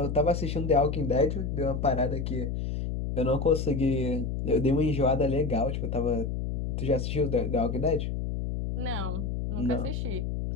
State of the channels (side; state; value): left; noise; hum, 3 dB below the sound